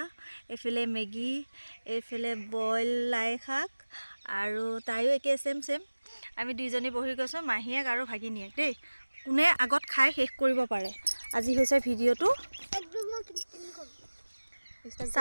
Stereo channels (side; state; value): both; inverted; correlation -1.00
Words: এইফালে মেগী এইফালে বইল লাই শাক আৰু তাইও একে সেম আমি দুইজনী বহি গৈছোঁ মাহীয়েক আৰু ভাগিনীয়েক দেই কোনে আগত খাই শেষ কৰিব পাৰে আজি হৈছে ভিডিঅ'টো